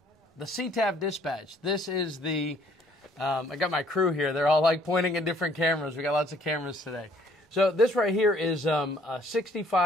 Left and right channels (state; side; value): normal; both; correlation 0.60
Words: CTAP Dispatch. This is the, I got my crew here. They're all like pointing at different cameras. We got lots of cameras today. So this right here is a